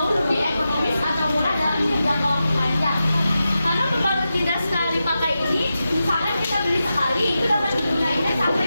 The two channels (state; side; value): inverted; both; correlation -0.91